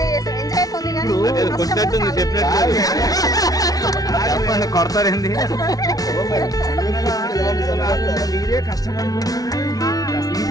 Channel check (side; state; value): right; late; 0.18 ms